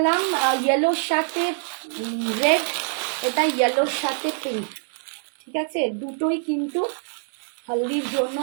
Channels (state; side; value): silent; left; 55 dB below the other